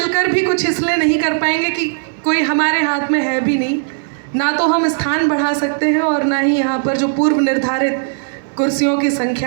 भी कुछ इसलिए नहीं कर पाएंगे कि कोई हमारे हाथ में है भी नहीं, ना तो हम स्थान बढ़ा सकते हैं और ना ही यहाँ पर जो पूर्व निर्धारित कुर्सियों की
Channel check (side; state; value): left; silent; digital silence